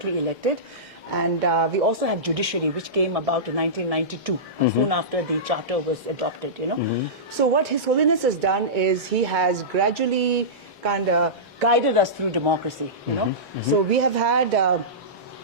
elected. And we also have judiciary, which came about in 1992, soon after the charter was adopted, So what His Holiness has done is he has gradually kind of guided us through democracy, So we have had,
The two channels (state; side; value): normal; both; correlation -0.18